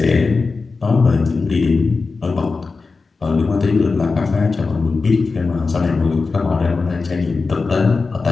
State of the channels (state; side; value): quieter; right; 4.2 dB